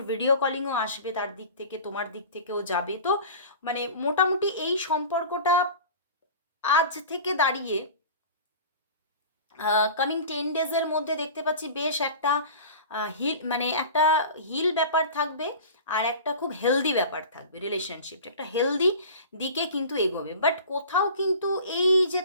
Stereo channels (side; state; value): both; inverted; correlation -0.38